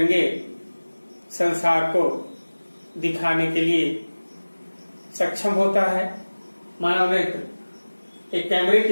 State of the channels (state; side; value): inverted; both; correlation -1.00